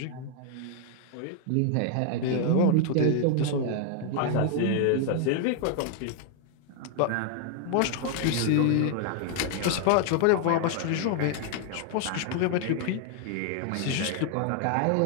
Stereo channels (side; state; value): both; different; correlation 0.00